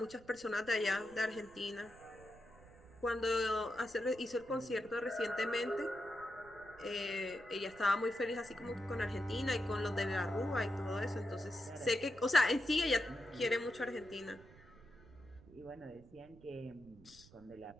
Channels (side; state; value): right; noise; rumble, 22 dB below the sound